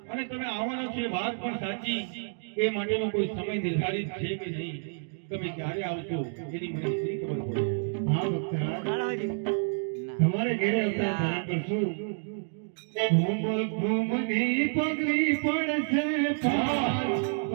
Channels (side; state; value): left; silent; digital silence